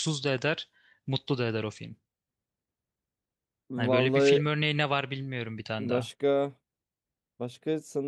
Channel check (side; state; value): both; identical; correlation 1.00